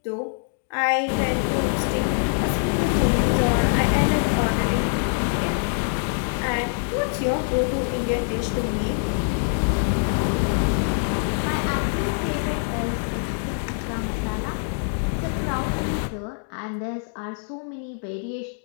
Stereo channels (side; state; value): right; silent; digital silence